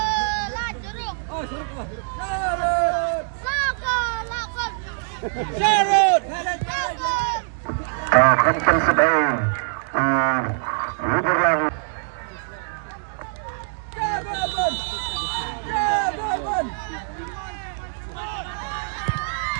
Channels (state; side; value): silent; left; digital silence